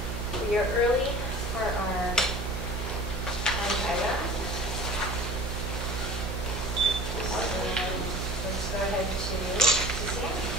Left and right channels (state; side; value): noise; right; hum, 5 dB below the sound